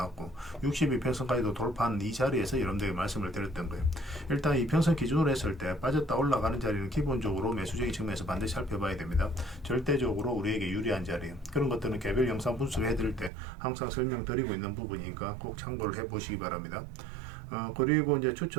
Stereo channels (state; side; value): drops out; left; at 13.3 s